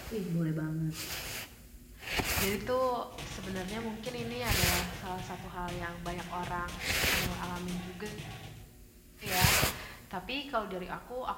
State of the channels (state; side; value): identical; both; correlation 1.00